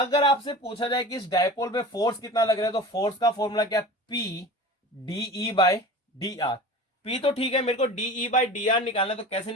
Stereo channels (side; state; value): both; normal; correlation 0.36